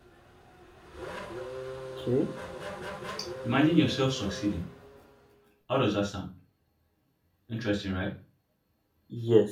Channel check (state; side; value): identical; both; correlation 1.00